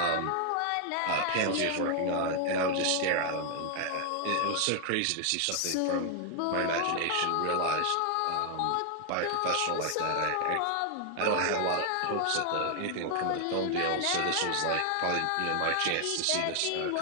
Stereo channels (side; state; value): both; different; correlation 0.00